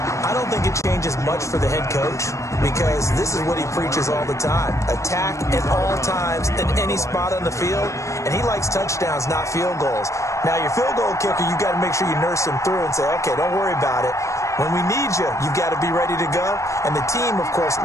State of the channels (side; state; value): right; late; 0.15 ms